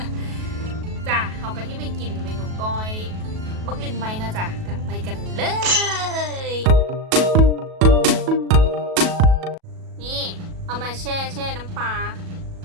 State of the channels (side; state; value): left; late; 37 ms